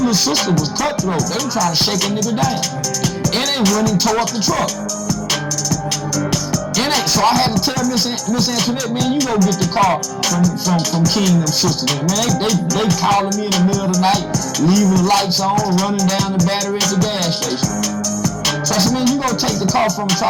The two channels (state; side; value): identical; both; correlation 1.00